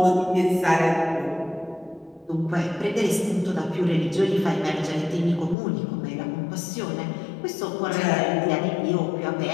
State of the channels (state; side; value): drops out; right; at 5.6 s